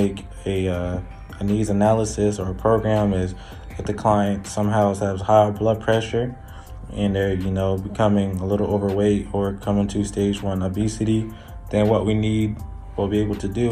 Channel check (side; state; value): both; identical; correlation 1.00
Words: a needs analysis or a program is if the client somehow has high blood pressure and they're becoming a little overweight or coming to stage 1 obesity, then what we will be able to